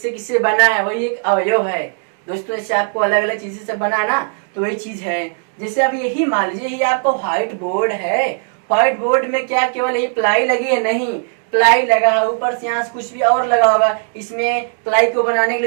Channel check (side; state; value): left; silent; digital silence